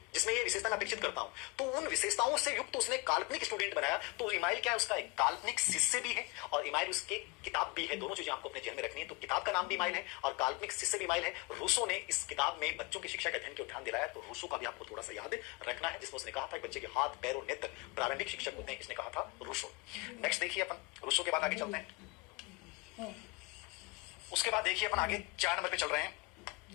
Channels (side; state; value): right; quieter; 25.0 dB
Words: जिसमें ये विशेषता मैं अपेक्षित करता हूं। तो उन विशेषताओं से युक्त उसने काल्पनिक स्टूडेंट बनाया। तो इमाइल क्या है? उसका एक काल्पनिक शिष्य भी है और इमाइल उसके किताब भी है। दोनों चीजें आपको अपने ध्यान में रखनी है। तो किताब का नाम भी इमाइल है और काल्पनिक शिष्य भी इमाइल है। रूसो ने इस किताब में बच्चों की शिक्षा के अध्ययन को ध्यान दिलाया। तो रूसो का भी आपको थोड़ा सा याद रखना है, जिसमें उसने कहा था कि बच्चे के हाथ, पैर और नेत्र प्रारंभिक शिक्षक होते हैं। इसने कहा था रूसो। नेक्स्ट देखिए अपन रूसो के बाद आगे चलते हैं। उसके बाद देखिए अपन आगे 4 नंबर पे चल रहे हैं।